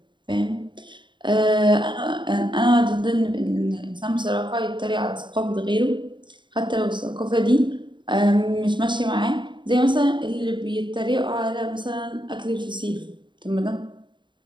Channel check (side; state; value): left; late; 0.23 ms